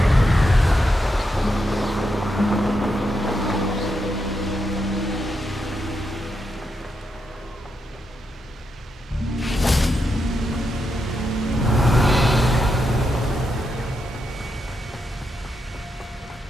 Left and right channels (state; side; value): normal; both; correlation 0.84